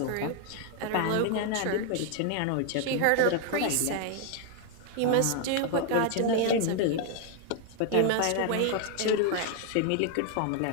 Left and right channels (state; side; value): different; both; correlation 0.00